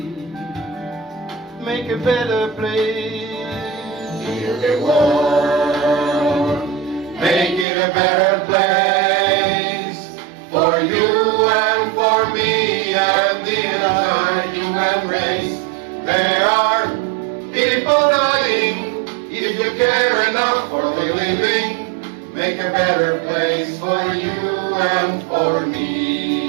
make a better place. Heal the world, make it a better place for you and for me and the entire human race. There are people dying. If you care enough for the living, make a better place for you and for me.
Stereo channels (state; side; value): drops out; left; at 7.7 s